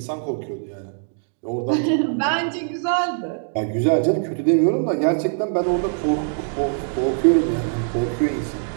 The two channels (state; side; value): silent; left; 64 dB below the other